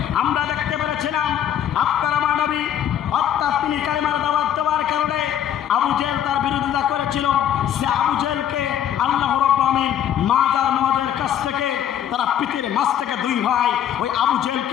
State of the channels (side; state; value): right; quieter; 10.1 dB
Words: আমরা দেখতে পেরেছিলাম আপনার আমার নবী অর্থাৎ তিনি কালেমার দাওয়াত দেওয়ার কারণে আবু জেহেল তার বিরোধিতা করেছিল, সে আবু জেহেলকে আল্লাহ রাব্বুল আলামিন মাদ আর মুআদের কাছ থেকে তারা পৃথিবীর মাঝ থেকে দুই ভাই ওই আবু